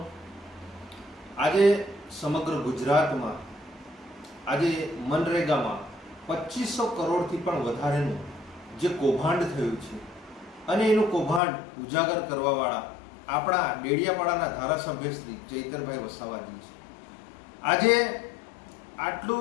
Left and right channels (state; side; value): drops out; right; at 11.4 s